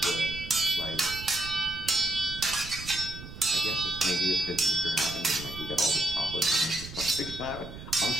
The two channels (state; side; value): noise; right; rumble, 12 dB below the sound